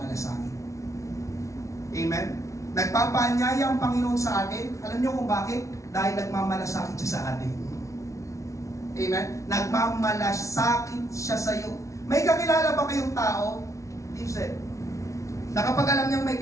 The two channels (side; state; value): right; late; 0.15 ms